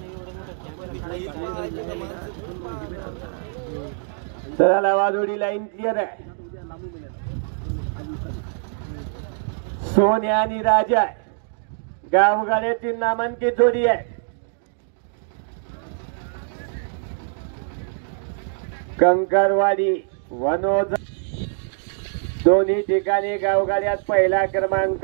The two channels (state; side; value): silent; left; digital silence